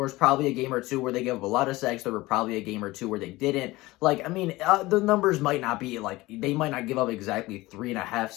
probably a game or two where they gave up a lot of sacks. There were probably a game or two where they didn't. The numbers might not be they might not give up exactly 3.5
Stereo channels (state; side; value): quieter; right; 19.8 dB